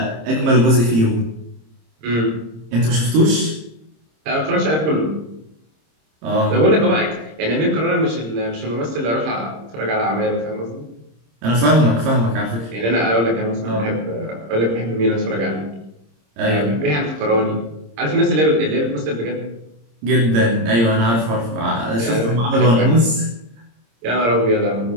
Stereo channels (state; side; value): late; left; 26 ms